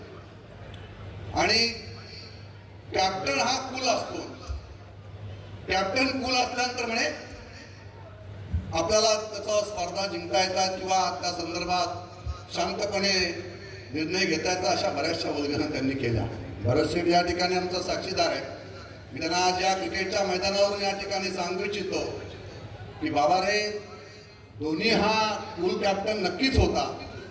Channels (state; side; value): identical; both; correlation 1.00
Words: आणि कॅप्टन हा कूल असतो. कॅप्टन कूल असल्यानंतर म्हणे आपल्याला त्याचा स्पर्धा जिंकता येतात किंवा त्या संदर्भात शांतपणे निर्णय घेता येतात, अशा बऱ्याचशा उद्घाटना त्यांनी केल्या. भरतशेठ या ठिकाणी आमचा साक्षीदार आहे. मी त्यांना आज या क्रिकेटच्या मैदानावरून या ठिकाणी सांगू इच्छितो की बाबा रे, धोनी हा कूल कॅप्टन नक्कीच होता,